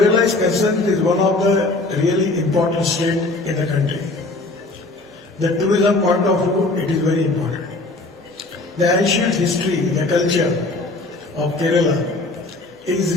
is concerned, it is one of the really important states in the country. The tourism point of view, it is very important. The ancient history, the culture of Kerala is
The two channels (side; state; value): right; quieter; 3.0 dB